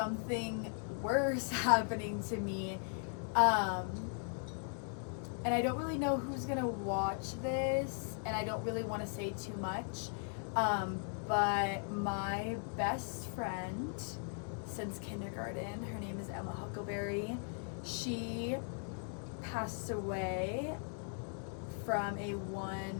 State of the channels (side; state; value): right; silent; 52 dB below the other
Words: worse happening to me. And I don't really know who's gonna watch this, and I don't really want to say too much, but my best friend since kindergarten, her name is Emma Huckleberry, she passed away from a